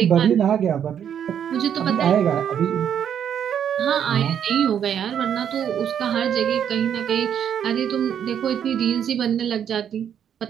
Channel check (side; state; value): left; quieter; 8.9 dB